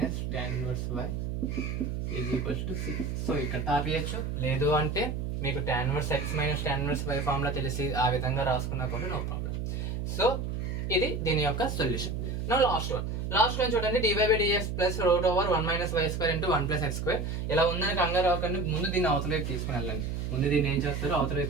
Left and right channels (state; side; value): noise; right; hum, 3 dB below the sound